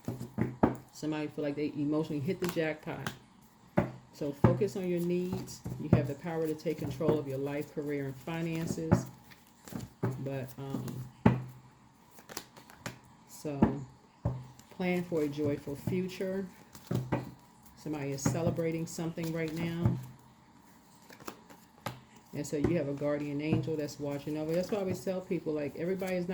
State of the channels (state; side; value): identical; both; correlation 1.00